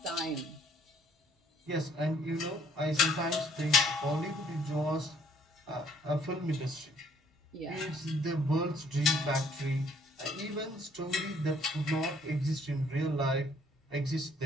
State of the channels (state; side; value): normal; both; correlation 0.62